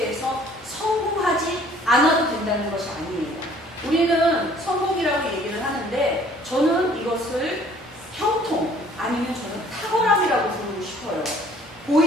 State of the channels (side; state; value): both; normal; correlation 0.56